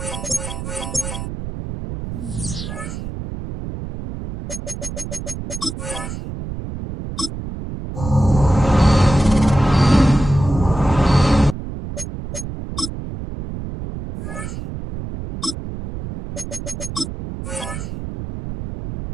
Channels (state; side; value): noise; right; rumble, 8 dB below the sound